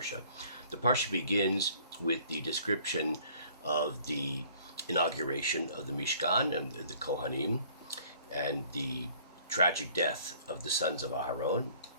The parsha begins with the description of the inauguration of the Mishkan and the Kohanim, and the tragic death of the sons of Aharon.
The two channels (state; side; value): inverted; both; correlation -0.56